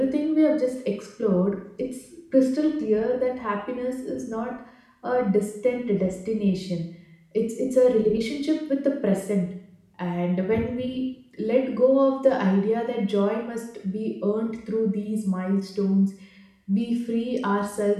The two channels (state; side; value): identical; both; correlation 1.00